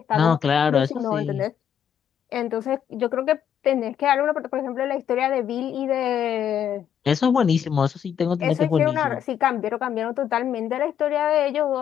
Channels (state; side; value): quieter; right; 8.8 dB